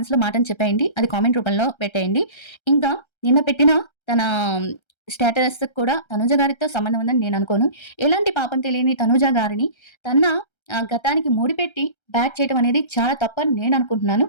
మాటని చెప్పేయండి. అది కామెంట్ రూపంలో పెట్టేయండి. ఇంకా నిన్న పెట్టిన తన స్టేటస్‌కి కూడా తనుజ గారితో సంబంధం ఉందని నేను అనుకోను. ఎలాంటి పాపం తెలియని తనుజ గారిని తన గతానికి ముడిపెట్టి బ్యాట్ చేయడం అనేది చాలా తప్పని నేను అనుకుంటున్నాను.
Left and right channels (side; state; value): right; late; 1.3 ms